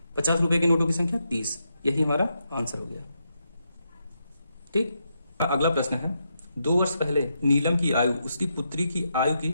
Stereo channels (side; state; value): both; inverted; correlation -0.83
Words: 50 रुपए के नोटों की संख्या 30, यही हमारा आंसर हो गया। ठीक, अगला प्रश्न है, 2 वर्ष पहले नीलम की आयु उसकी पुत्री की आयु की